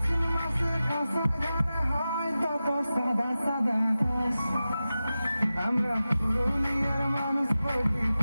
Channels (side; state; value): both; inverted; correlation -0.94